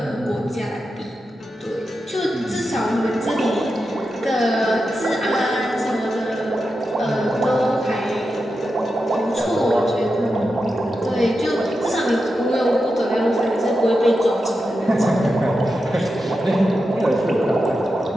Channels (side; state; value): both; normal; correlation 0.89